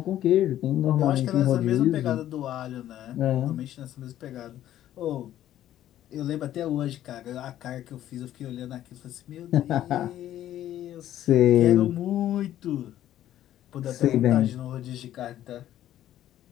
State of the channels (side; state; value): right; quieter; 12.4 dB